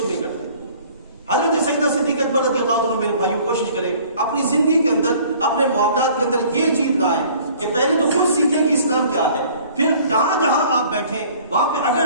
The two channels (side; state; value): both; inverted; correlation -0.52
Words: نہیں کرتے۔ حضرت سیدنا صدیق اکبر رضی اللہ عنہ میرے بھائیوں کوشش کریں اپنی زندگی کے اندر، اپنے معاملات کے اندر یہ چیز لائیں کہ پہلے تو خود سیکھیں کہ اسلام کیا ہے، پھر جہاں جہاں آپ بیٹھیں وہاں پہ اگر